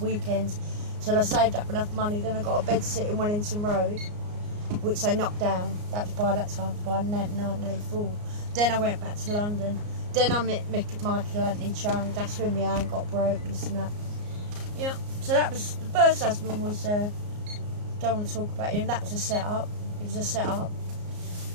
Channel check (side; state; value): left; late; 34 ms